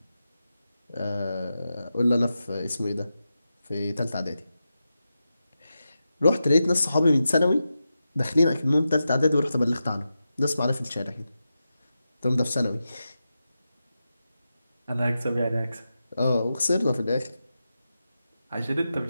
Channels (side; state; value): both; inverted; correlation -0.90